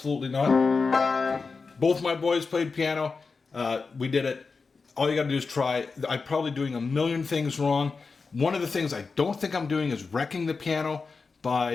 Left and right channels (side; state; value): right; quieter; 4.5 dB